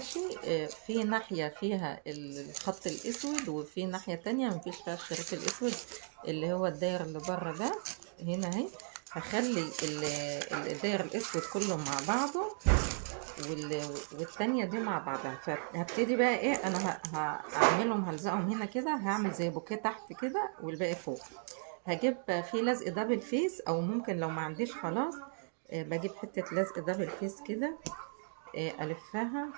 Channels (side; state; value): left; silent; 54 dB below the other